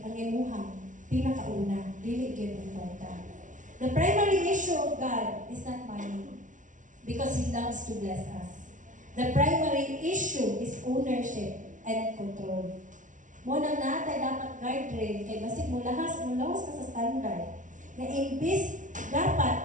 ang imuhang pinakauna, dili gyud ang kwarta. The primary issue of God is not money because He loves to bless us. The primary issue is ownership and control. Mo nang natay dapat guardrail kay basig mo lahas ka sa standard. Na imbis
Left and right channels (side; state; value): left; late; 0.37 ms